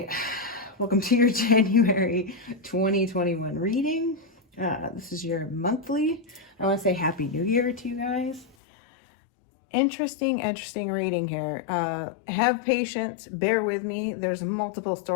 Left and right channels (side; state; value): right; drops out; at 8.6 s